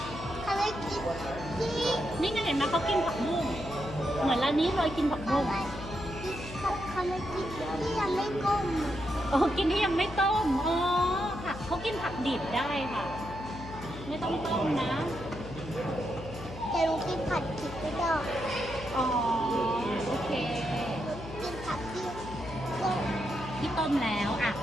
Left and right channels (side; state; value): left; noise; hum, 12 dB below the sound